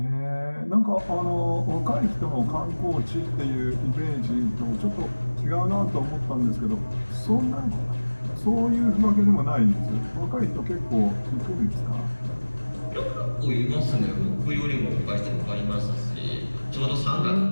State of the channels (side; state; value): both; inverted; correlation -1.00